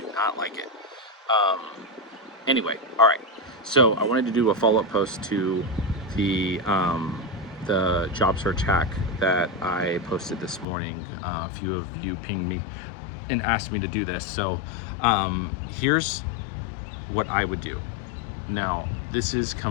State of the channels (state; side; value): drops out; right; at 10.7 s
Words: not like it. Um, anyway, all right. So I wanted to do a follow up post to the job search hack that I posted this morning. A few of you pinged me and asked me to do this. So here's what I would do. Now, this is